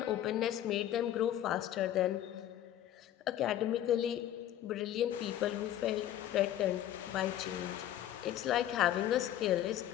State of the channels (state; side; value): quieter; right; 12.0 dB